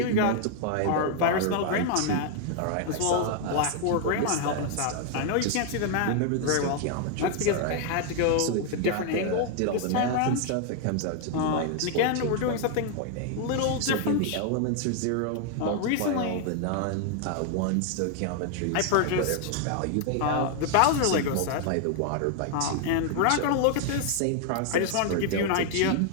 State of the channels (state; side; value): different; both; correlation 0.00